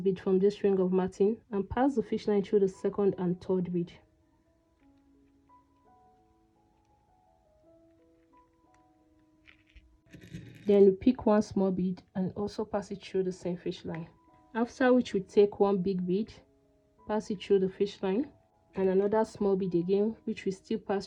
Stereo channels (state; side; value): identical; both; correlation 1.00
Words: bead from this ring of matting and pass the fish line through the second and third bead. Then we pick 1 small bead and also pass it through the same fish line. After which we take 1 big bead, pass it through the fish line, and another small bead again, which we still pass